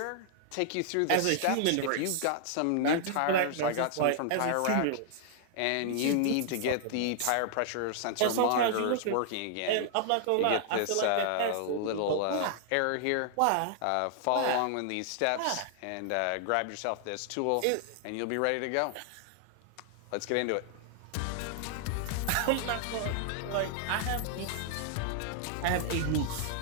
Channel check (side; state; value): both; different; correlation 0.00